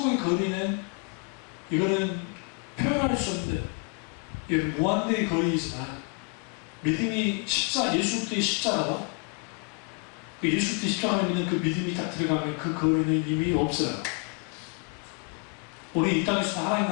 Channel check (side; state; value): right; quieter; 36.0 dB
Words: 거리는 이거는 표현할 수 없는 이건 무한대의 거리이지만 믿음이 예수 그리스도의 십자가와 그 예수 그리스도의 십자가를 믿는 그 믿음이 딱 들어가면 그 거리는 이미 없어요. 우리 이 땅에서 하나님